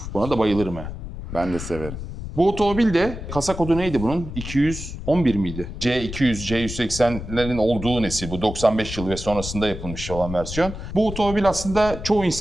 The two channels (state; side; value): noise; left; rumble, 9 dB below the sound